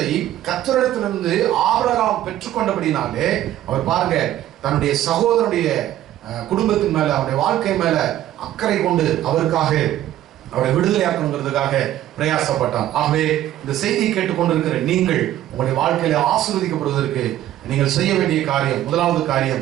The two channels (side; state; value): left; quieter; 13.0 dB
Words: கர்த்தரிடத்திலிருந்து ஆபிரகாம் பெற்றுக்கொண்டபடினாலே அவர் பாருங்க, தன்னுடைய சகோதரனுடைய குடும்பத்தின் மேல, அவருடைய வாழ்க்கை மேல அக்கறை கொண்டு அவருக்காக அவரை விடுதலையாக்கணுங்கிறதுக்காக பிரயாசப்பட்டார். ஆகவே இந்த செய்தியை கேட்டுக்கொண்டிருக்கிற நீங்கள் உங்களுடைய வாழ்க்கையில ஆசீர்வதிக்கப்படுவதற்கு நீங்கள் செய்ய வேண்டிய காரியம், முதலாவது காரியம்